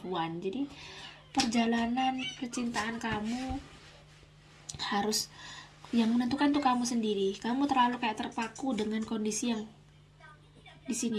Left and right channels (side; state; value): both; identical; correlation 1.00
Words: one. Jadi perjalanan percintaan kamu harus, yang menentukan tuh kamu sendiri. Kamu terlalu kayak terpaku dengan kondisi yang di